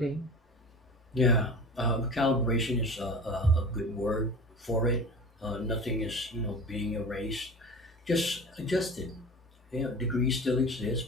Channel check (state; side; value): normal; both; correlation 0.36